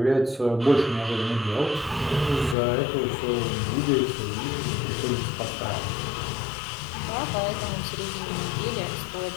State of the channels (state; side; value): drops out; right; at 2.6 s